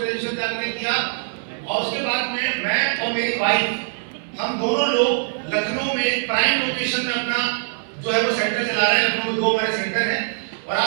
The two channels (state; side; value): silent; left; digital silence